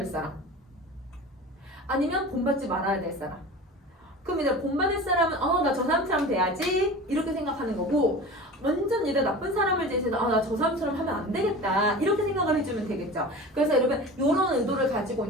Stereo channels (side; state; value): both; normal; correlation 0.35